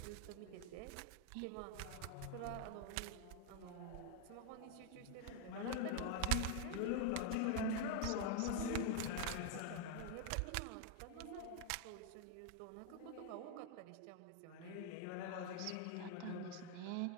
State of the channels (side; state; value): both; different; correlation 0.01